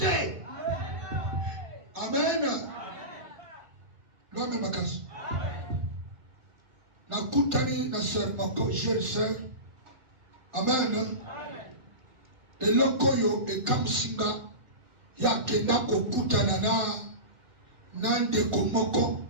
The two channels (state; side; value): late; left; 2.0 ms